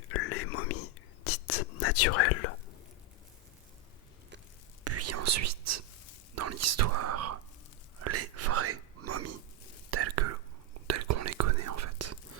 les momies dites naturelles, puis ensuite, dans l'histoire, les vraies momies, telles qu'on les connaît en fait.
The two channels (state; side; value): normal; both; correlation 0.04